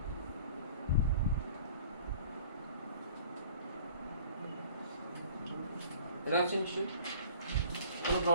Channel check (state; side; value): inverted; both; correlation -0.47